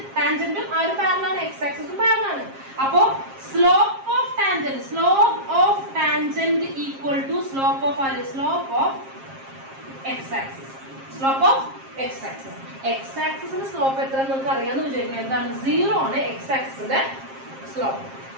ടാൻജന്റും ആ ഒരു പാരലാണ്, എക്സ് ആക്സിസും പാരലാണ്. അപ്പോ slope of tangent equal to slope of x axis. Slope of x axis. X ആക്സിസിന്റെ സ്ലോപ്പ് എത്ര നിങ്ങൾക്ക് അറിയാമെന്ന് വിചാരിക്കുന്നത്? എന്താണ്? 0 ആണ് എക്സ് ആക്സിസിന്റെ സ്ലോപ്പ്.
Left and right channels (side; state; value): left; late; 7.5 ms